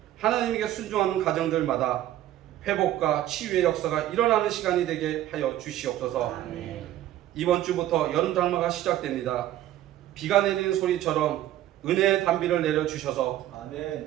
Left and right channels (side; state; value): left; quieter; 13.3 dB